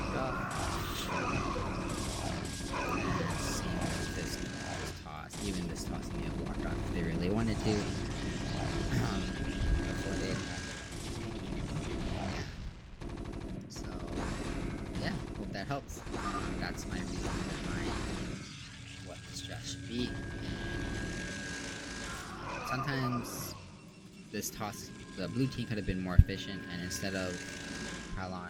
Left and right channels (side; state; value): both; identical; correlation 1.00